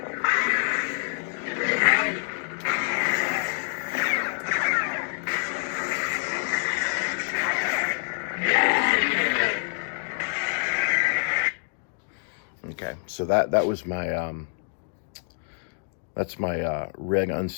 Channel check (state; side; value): silent; right; digital silence